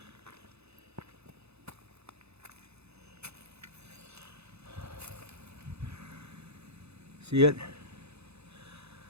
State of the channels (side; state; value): left; late; 0.79 ms